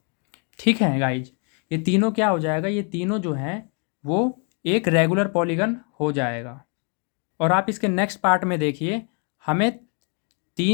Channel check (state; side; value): quieter; right; 37.8 dB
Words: ठीक है गाइज, ये तीनों क्या हो जाएगा, ये तीनों जो हैं वो एक रेगुलर पॉलीगन हो जाएगा। और आप इसके नेक्स्ट पार्ट में देखिए, हमें